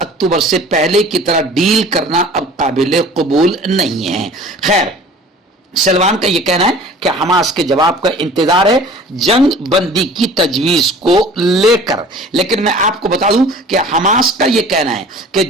اکتوبر سے پہلے کی طرح ڈیل کرنا اب قابل قبول نہیں ہے۔ خیر، سلوان کا یہ کہنا ہے کہ حماس کے جواب کا انتظار ہے جنگ بندی کی تجویز کو لے کر، لیکن میں آپ کو بتا دوں کہ حماس کا یہ کہنا ہے کہ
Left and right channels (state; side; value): normal; both; correlation 0.46